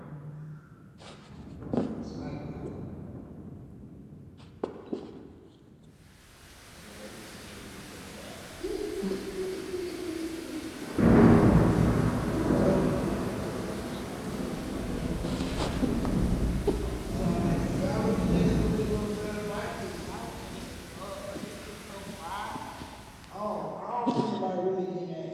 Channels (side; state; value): both; identical; correlation 1.00